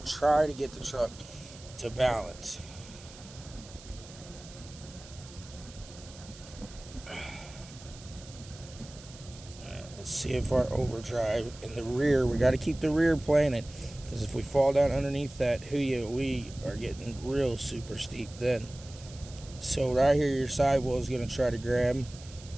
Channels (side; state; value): right; noise; hiss, 19 dB below the sound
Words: try to get the truck to balance. Let's see if our overdrive in the rear, we got to keep the rear planted, because if we fall down underneath that, we are getting real super steep then. So right here, your sidewall is going to try to grab.